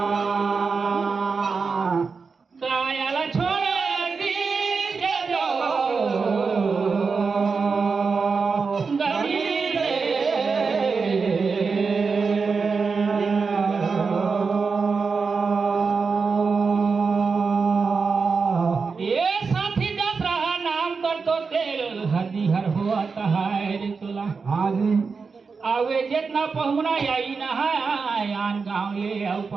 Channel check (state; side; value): quieter; left; 4.9 dB